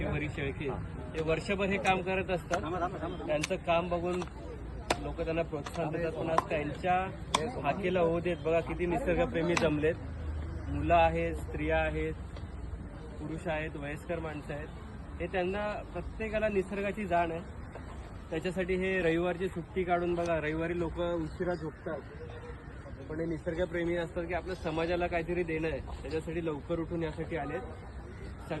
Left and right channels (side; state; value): both; identical; correlation 1.00